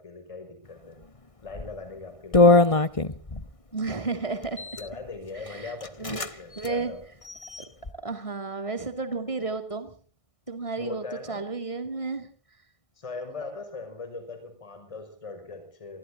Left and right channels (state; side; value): late; right; 1.6 ms